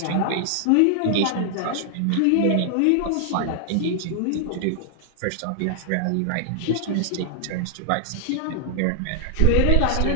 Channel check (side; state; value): both; different; correlation -0.01